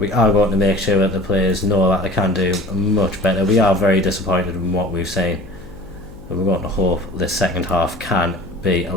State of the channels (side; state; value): left; noise; hum, 18 dB below the sound